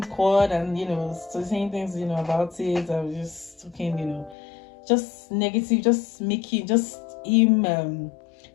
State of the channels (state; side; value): drops out; right; at 4.4 s